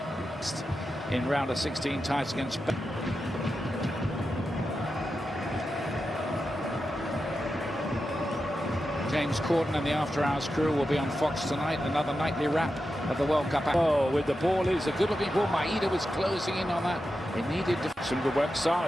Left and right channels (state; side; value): normal; both; correlation 0.90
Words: in round of 16 ties against James Corden and the After Hours crew will be on Fox tonight. Another nightly wrap of the World Cup. Oh, with the ball is a good-looking ball. Maeda was closing in on that. It needed some good work.